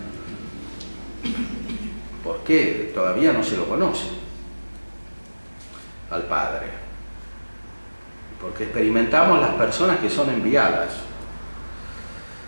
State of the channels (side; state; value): both; inverted; correlation -1.00